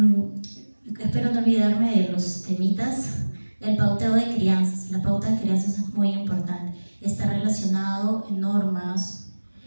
Espero no olvidarme de los temitas. El pauteo de crianzas. La pauta de crianzas es muy importante. Está relacionado en normas,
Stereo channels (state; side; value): inverted; both; correlation -1.00